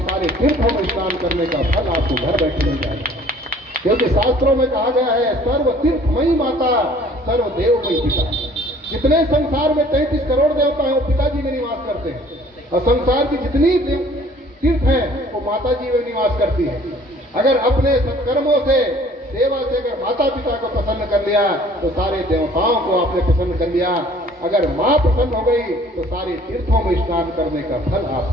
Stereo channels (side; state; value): both; normal; correlation 0.54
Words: सारे तीर्थों में स्नान करने का फल आपको घर बैठे मिल जाएगा। क्योंकि शास्त्रों में कहा गया है, सर्व तीर्थमयी माता सर्व देवमयी पिता। जितने संसार में 33 करोड़ देवता हैं वो पिताजी में निवास करते हैं, और संसार की जितनी तीर्थ है वो माता जी में निवास करती है। अगर अपने सत्कर्मों से, सेवा से अगर माता पिता को प्रसन्न कर लिया तो सारे देवताओं को आपने प्रसन्न कर लिया। अगर माँ प्रसन्न हो गई तो सारे तीर्थों में स्नान करने का फल